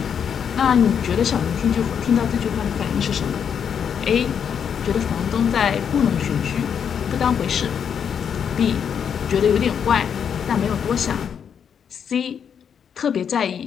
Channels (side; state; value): right; quieter; 7.7 dB